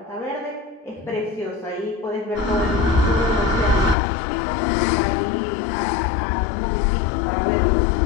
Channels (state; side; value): drops out; right; at 4.0 s